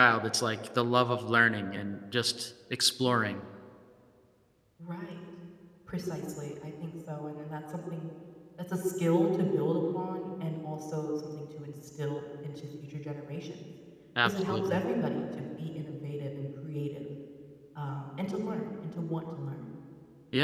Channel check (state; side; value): identical; both; correlation 1.00